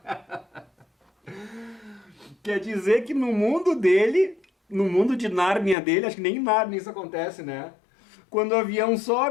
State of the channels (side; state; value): right; drops out; at 5.8 s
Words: Quer dizer que no mundo dele, no mundo de Nárnia dele, acho que nem em Nárnia isso acontece, né? Quando o avião